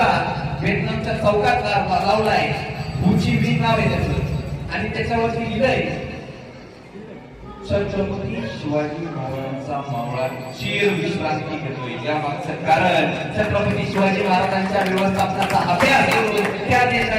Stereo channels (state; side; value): identical; both; correlation 1.00